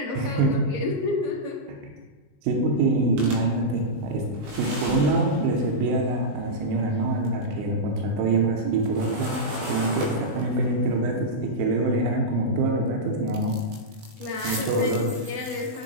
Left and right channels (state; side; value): late; left; 20 ms